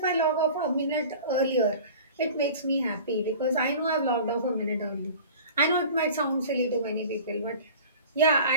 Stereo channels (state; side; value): inverted; both; correlation -0.41